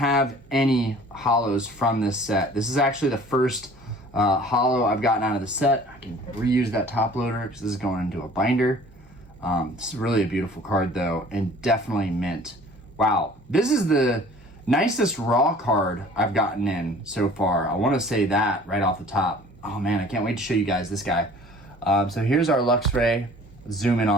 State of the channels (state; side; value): normal; both; correlation 0.49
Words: any hollows from this set. This is actually the first hollow I've gotten out of the set. I can reuse that top loader because this is going into a binder. This is really a beautiful card though, and definitely mint. Wow, this is the nicest raw card I've gotten in so far. I want to say that right off the top. Oh man, I can't wait to show you guys this guy. So here's our Luxray. Zoom in